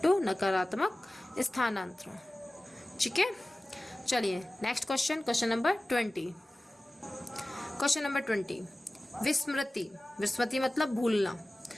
नकारात्मक स्थानांतरण। ठीक है, चलिए next question, question number 20। Question number 20 विस्मृति। विस्मृति मतलब भूलना।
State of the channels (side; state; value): both; normal; correlation 0.97